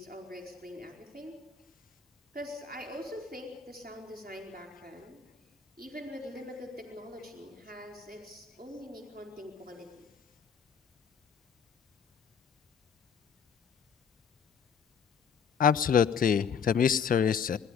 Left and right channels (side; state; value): right; quieter; 6.9 dB